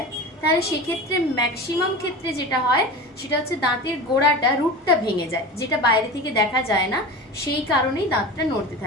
তাহলে সেক্ষেত্রে ম্যাক্সিমাম ক্ষেত্রে যেটা হয় সেটা হচ্ছে দাঁতের গোড়াটা, রুটটা ভেঙে যায়, যেটা বাইরে থেকে দেখা যায় না, সেই কারণেই দাঁতটা নড়তে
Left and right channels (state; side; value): normal; both; correlation 0.31